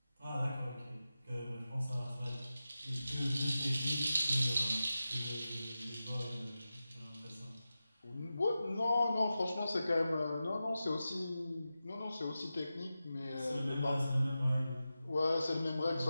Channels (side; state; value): both; inverted; correlation -0.93